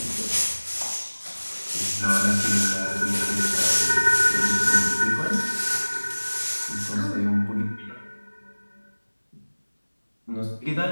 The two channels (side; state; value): both; inverted; correlation -1.00